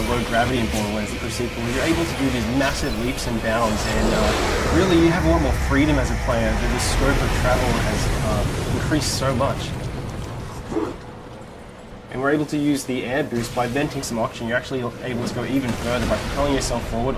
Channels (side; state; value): both; identical; correlation 1.00